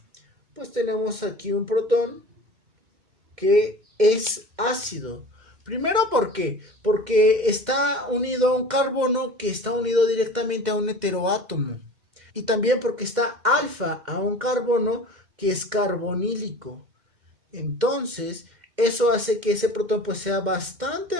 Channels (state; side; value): late; left; 2.1 ms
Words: pues tenemos aquí un protón que es ácido. Primero, ¿por qué? Porque está unido a un carbono que está unido directamente a un heteroátomo. Y también porque está alfa a un carbono que es carbonílico. Entonces, eso hace que ese protón pues sea